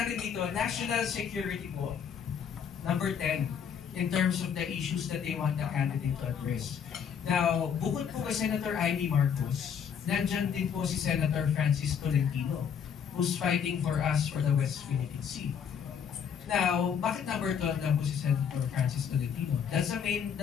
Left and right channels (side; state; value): right; quieter; 7.6 dB